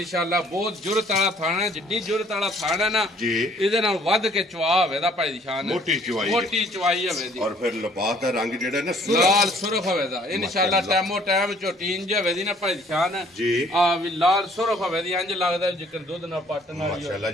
ਬਹੁਤ ਜੁਰਤ ਵਾਲਾ ਥਾਣਾ ਹੈ, ਜਿੱਡੀ ਜੁਰਤ ਵਾਲਾ ਥਾਣਾ ਹੈ ਨਾ ਜੀ, ਇਹਦੇ ਨਾਲ ਵੱਧ ਕੇ ਚਵਾ ਹੋਵੇ ਦਾ ਭਾਈ ਦੀ ਸ਼ਾਨ, ਮੋਟੀ ਚਵਾਈ ਮੋਟੀ ਚਵਾਈ ਹੋਵੇ ਦੀ। ਔਰ ਫਿਰ ਲਿਬਾਸ ਦਾ ਰੰਗ ਜਿਹੜਾ ਨਾ ਲਾਲ ਸੁਰਖ ਹੋਵੇ ਦਾ ਇਨਸ਼ਾਅੱਲਾ। ਟਾਈਮੋ ਟਾਈਮ ਝੋਟੀ ਇੰਜ ਹੋਵੇ ਦੀ ਨਾ ਭਾਈ ਦੀ ਸ਼ਾਨ ਜੀ, ਆ ਵੀ ਲਾਲ ਸੁਰਖ ਹੋਵੇ ਦੀ, ਇੰਜ ਲੱਗਦਾ ਜਿਕਰ ਦੁੱਧ ਨਾਲ ਪੱਟਣ ਵਾਲੀ ਮਾਸ਼ਾਅੱਲਾ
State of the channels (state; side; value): normal; both; correlation 0.59